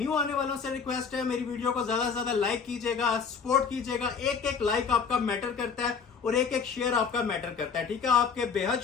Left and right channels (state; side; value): quieter; right; 5.9 dB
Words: आने वालों से रिक्वेस्ट है, मेरी वीडियो को ज्यादा से ज्यादा लाइक कीजिएगा, सपोर्ट कीजिएगा। एक एक लाइक आपका मैटर करता है और एक एक शेयर आपका मैटर करता है। ठीक है, आपके बेहद